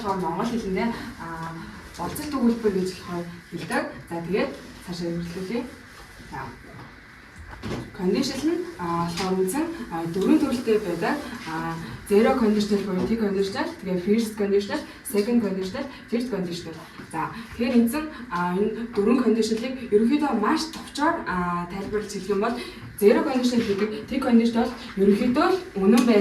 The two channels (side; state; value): both; identical; correlation 1.00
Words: монгол хэлэндээ болцол төгөлбөр гэж болохоор хэлдэг. За, тэгээд цаашаа үргэлжлүүлье. За. Conditional нь болохоор үзэн дөрвөн төрөлтэй байдаг. Zero conditional буюу T conditional, тэгээ first conditional, second conditional, third conditional. За тэгэхээр эзэн энэ дөрвөн conditional-ыг ерөнхийдөө маш товчоор тайлбарлаж хэлэх юм бол zero conditional гэдэг T conditional ерөнхийдөө үнэн